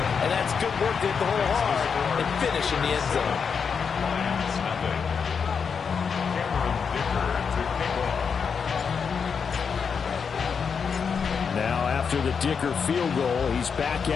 And that's good work to hit the hole hard and finish in the end zone. Now after the Dicker field goal, he's back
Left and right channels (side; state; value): right; quieter; 6.2 dB